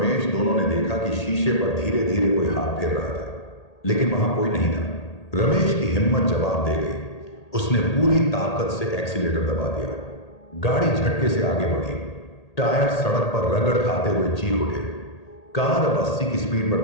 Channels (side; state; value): right; late; 1.8 ms